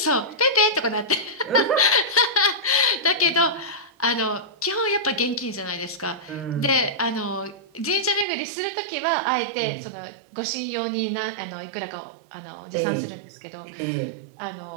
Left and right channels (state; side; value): drops out; left; at 8.2 s